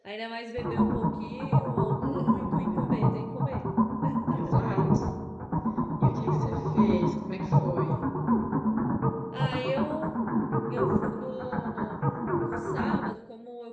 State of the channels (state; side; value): identical; both; correlation 1.00